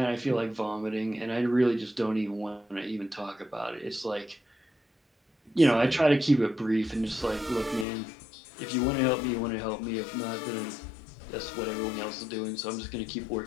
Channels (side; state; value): right; drops out; at 7.9 s